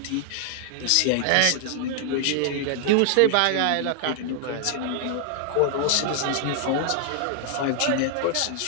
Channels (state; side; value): different; both; correlation 0.00